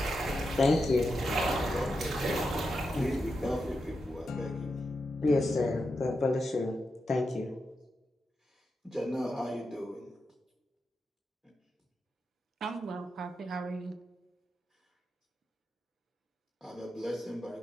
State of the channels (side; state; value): both; normal; correlation 0.87